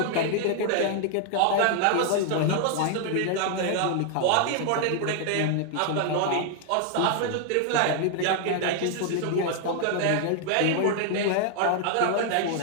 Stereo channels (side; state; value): both; different; correlation 0.00